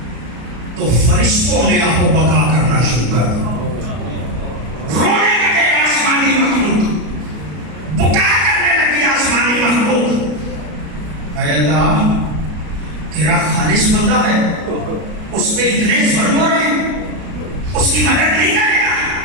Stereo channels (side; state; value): left; late; 33 ms